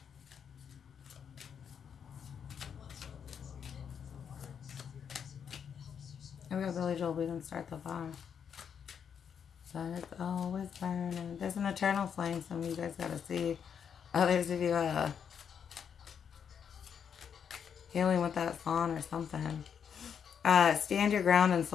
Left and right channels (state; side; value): quieter; right; 7.5 dB